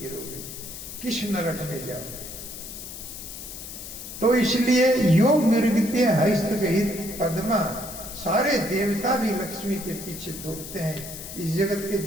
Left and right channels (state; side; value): noise; left; hiss, 11 dB below the sound